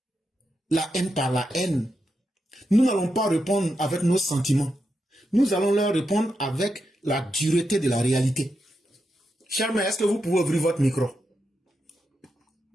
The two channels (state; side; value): normal; both; correlation 0.85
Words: la haine par la haine. Nous n'allons pas répondre avec nos sentiments. Nous allons leur répondre avec la dureté de la réalité. Charme, est-ce que vous pouvez ouvrir votre micro?